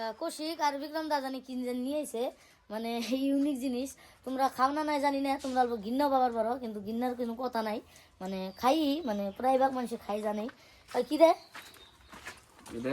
কৌশিক আর বিক্রম দা জানি কি নিয়ে এসে, মানে ইউনিক জিনিস। তোমরা খাও না নাই জানি না, তোমরা অল্প ঘিন্নাও পাবার পারো, কিন্তু ঘিন্নার কোনো কথা নাই। মানে খাই, মানে প্রায় ভাগ মানুষ খাই জানেই। কি রে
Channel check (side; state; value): both; identical; correlation 1.00